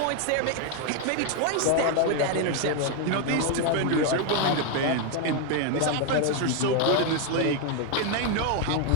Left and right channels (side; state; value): both; different; correlation 0.01